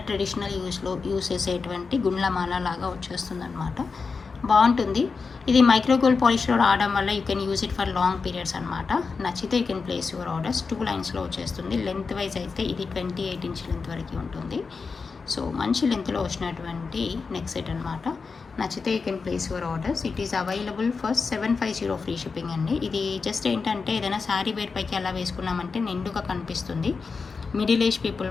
ట్రెడిషనల్ యూస్ చేసేటువంటి గుండ్లమాల లాగా వచ్చేస్తుంది అనమాట. బాగుంటుంది. ఇది మైక్రో గోల్డ్ పాలిష్లో రావడం వల్ల you can use it for long periods అనమాట. నచ్చితే you can place your orders. 2 లైన్స్లో వచ్చేస్తుంది. లెంత్ వైజ్ అయితే ఇది 28 ఇంచ్ లెంత్ వరకు ఉంటుంది. సో మంచి లెంత్లో వచ్చినటువంటి నెక్ సెట్ అనమాట. నచ్చితే you can place your orders. It is available for 750 free shipping అండి. ఇది జస్ట్ ఏంటంటే ఏదైనా శారీ వేర్ పైకి అలా వేసుకున్నామంటే నిండుగా కనిపిస్తుంది. మిడిల్ ఏజ్ పీపుల్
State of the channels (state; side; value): quieter; right; 4.8 dB